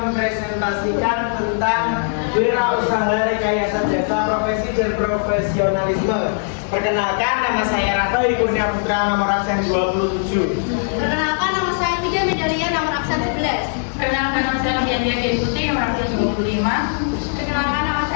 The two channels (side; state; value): right; silent; digital silence